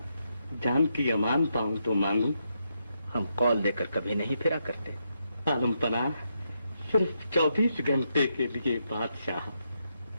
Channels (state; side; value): inverted; both; correlation -0.81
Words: जान की अमान पाऊं तो मांगू। हम कौल देकर कभी नहीं फिरा करते। आलम पनाह सिर्फ 24 घंटे के लिए बादशाह।